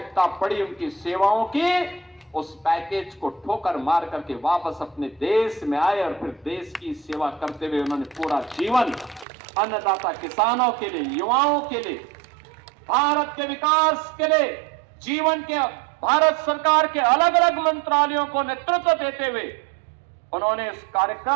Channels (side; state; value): left; drops out; at 9.2 s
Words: पड़ी उनकी सेवाओं की, उस पैकेज को ठोकर मार करके वापस अपने देश में आए और फिर देश की सेवा करते हुए उन्होंने पूरा जीवन अन्नदाता किसानों के लिए, युवाओं के लिए, भारत के विकास के लिए, जीवन के भारत सरकार के अलग अलग मंत्रालयों को नेतृत्व देते हुए उन्होंने इस